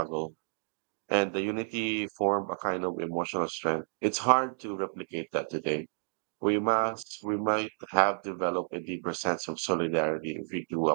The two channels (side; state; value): left; silent; digital silence